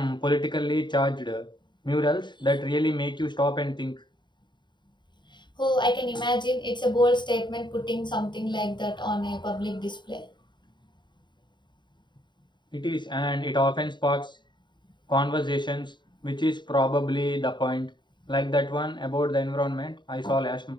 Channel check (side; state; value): right; late; 0.22 ms